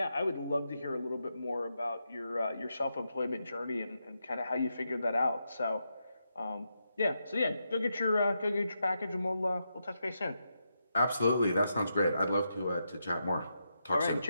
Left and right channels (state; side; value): inverted; both; correlation -0.84